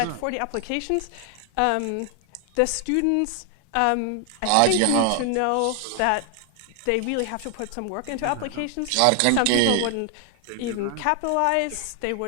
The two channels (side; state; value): both; different; correlation 0.00